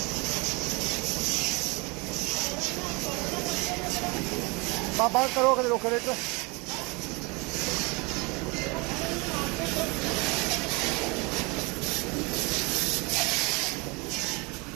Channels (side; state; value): left; quieter; 27.8 dB